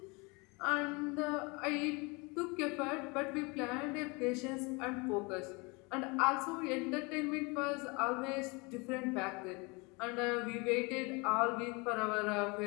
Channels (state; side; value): quieter; right; 28.2 dB